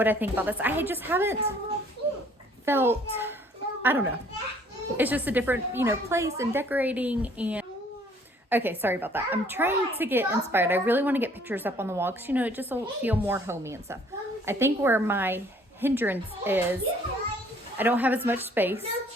I think about this. I just haven't felt, I don't know. It's just a different, you know, place and decorating. And okay, sorry about that. I'm trying to get inspired. I really want to get pictures up on the wall because, you know, it just will feel more homey and stuff. I think where my hindrance is, I don't have as much space,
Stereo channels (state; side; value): normal; both; correlation 0.59